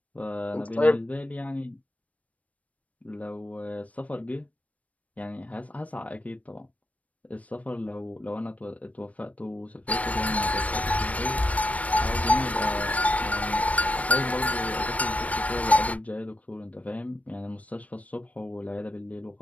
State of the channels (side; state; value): right; late; 0.067 ms